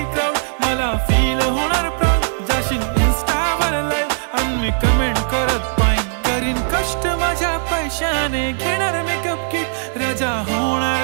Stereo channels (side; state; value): left; silent; 55 dB below the other